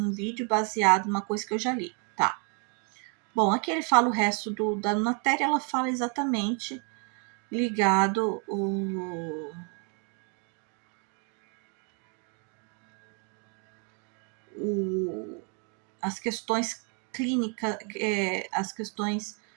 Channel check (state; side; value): quieter; left; 38.2 dB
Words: vídeo baseado numa coisa que eu já li, tá? Bom, aqui ele fala o resto da matéria, ela fala exatamente ligado as questões clínicas, as questões